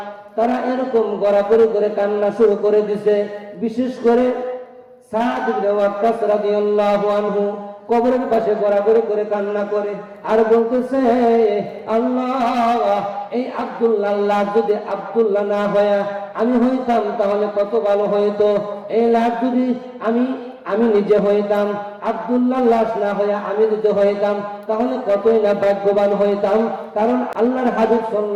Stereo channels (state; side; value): identical; both; correlation 1.00